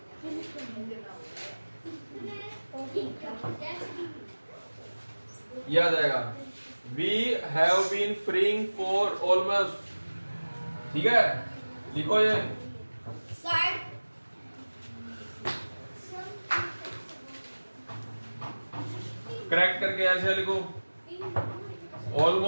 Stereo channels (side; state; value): both; inverted; correlation -1.00